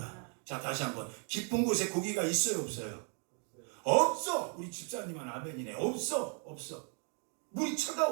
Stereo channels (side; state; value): left; quieter; 39.8 dB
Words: 자, 다시 한번. 깊은 곳에 고기가 있어요, 없어요? 없어. 우리 집사님은 아멘이네. 없어. 물이